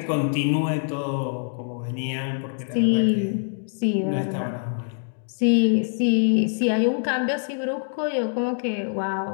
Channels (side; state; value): right; silent; digital silence